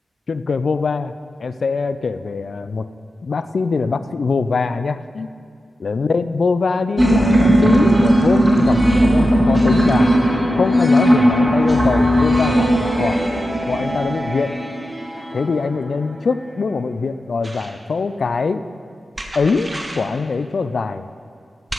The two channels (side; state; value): both; normal; correlation 0.91